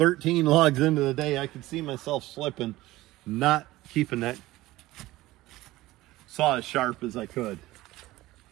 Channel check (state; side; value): quieter; left; 17.6 dB